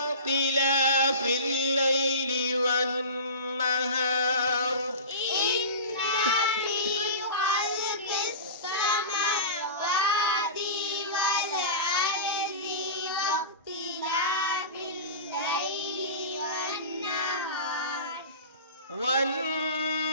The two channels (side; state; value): both; inverted; correlation -0.31